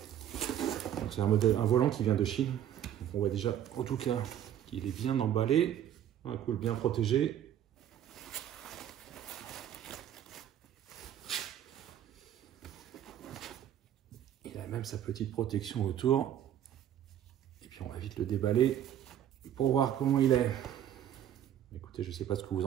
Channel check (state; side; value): quieter; left; 10.7 dB